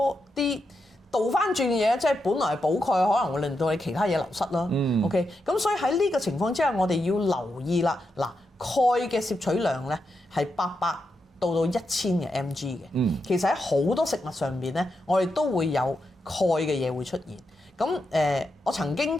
啲倒翻轉嘅嘢，即係本來係補鈣，可能會令到你其他嘢流失啦。OK， 咁所以喺呢個情況之下，我哋要留意啦。嗱，鈣嘅攝取量咧係800到1000嘅 mg 嘅，其實喺好多食物上邊咧，我哋都會有鈣嘅嘢會出現。咁我曾經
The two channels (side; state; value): both; normal; correlation 0.85